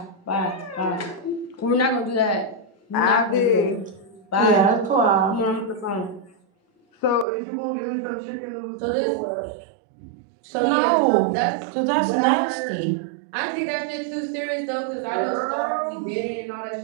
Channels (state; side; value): drops out; left; at 7.2 s